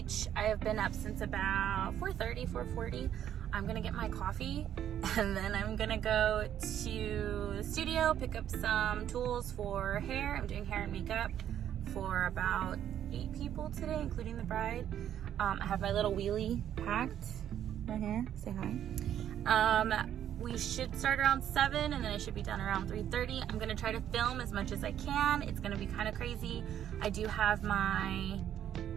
I have been up since about 4:40. I'm gonna get my coffee and then I'm gonna go to the studio, pick up some tools for hair. I'm doing hair and makeup for about 8 people today, including the bride. I have my little wheelie packed right here. Say hi. We should start around 7 and then I should be done around 3:30. I'm gonna try to film as much as I can. It's gonna be kind of crazy. I do have my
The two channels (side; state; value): left; quieter; 10.4 dB